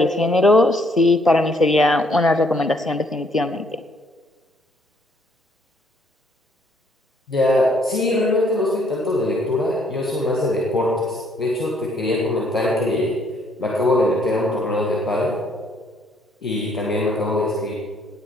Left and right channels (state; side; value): normal; both; correlation 0.67